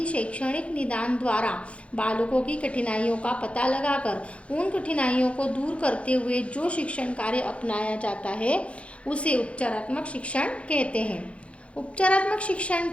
शैक्षणिक निदान द्वारा बालकों की कठिनाइयों का पता लगाकर उन कठिनाइयों को दूर करते हुए जो शिक्षण कार्य अपनाया जाता है उसे उपचारात्मक शिक्षण कहते हैं। उपचारात्मक शिक्षण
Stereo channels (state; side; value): late; right; 0.062 ms